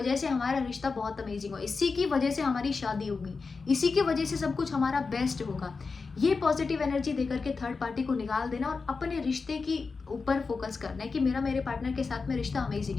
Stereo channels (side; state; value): right; quieter; 4.5 dB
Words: से हमारा रिश्ता बहुत अमेजिंग हो, इसी की वजह से हमारी शादी होगी, इसी की वजह से सब कुछ हमारा बेस्ट होगा। ये पॉजिटिव एनर्जी देकर के थर्ड पार्टी को निकाल देना और अपने रिश्ते की ऊपर फोकस करना है कि मेरे पार्टनर के साथ में रिश्ता